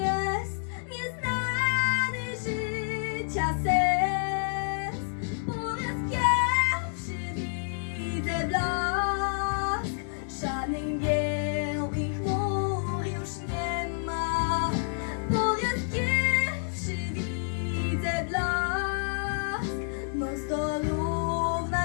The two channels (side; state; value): right; silent; digital silence